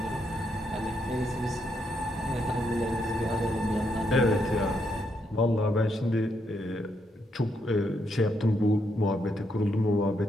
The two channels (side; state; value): both; normal; correlation 0.78